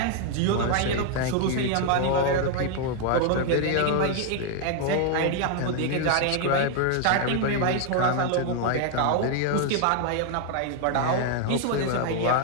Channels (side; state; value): both; different; correlation 0.00